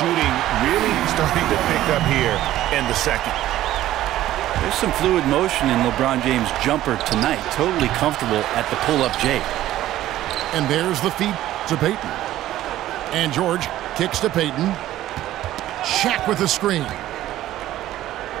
really starting to pick up here in the second. There's some fluid motion in LeBron James' jumper tonight. Totally comfortable at the pull-up J. And there's the feed to Payton. And George kicks to Payton. Shaq with the screen.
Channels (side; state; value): left; quieter; 14.0 dB